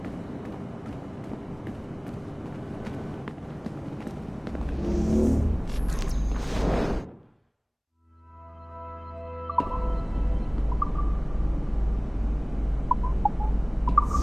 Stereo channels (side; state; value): both; identical; correlation 1.00